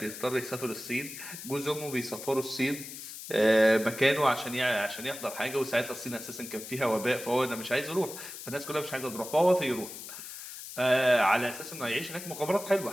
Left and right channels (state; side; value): noise; left; hiss, 11 dB below the sound